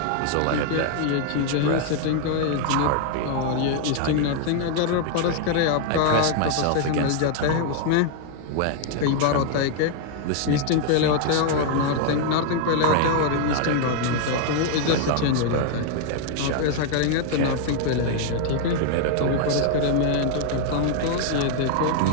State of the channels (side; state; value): both; different; correlation 0.00